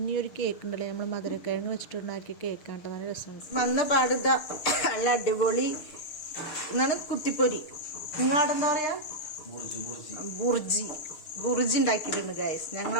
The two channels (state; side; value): late; right; 6.6 ms